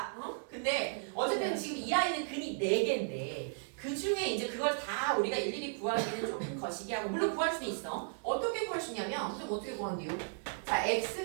근데 어쨌든 지금 이 아이는 근이 4개인데 그 중에 이제 그걸 다 우리가 일일이 구하기는 조금 거시기하고 물론 구할 수는 있어. 어떻게 구할 수 있냐면 선생님 어떻게 구한대요? 자 x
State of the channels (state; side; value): silent; left; digital silence